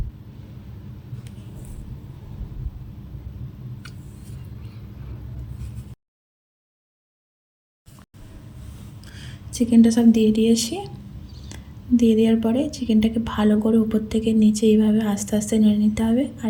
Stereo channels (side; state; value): both; identical; correlation 1.00